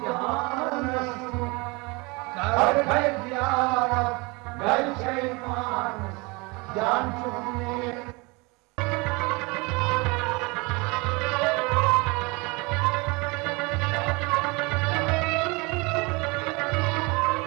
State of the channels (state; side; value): quieter; left; 26.9 dB